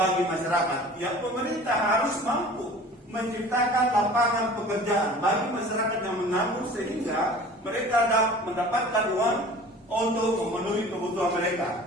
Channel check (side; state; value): both; normal; correlation 0.44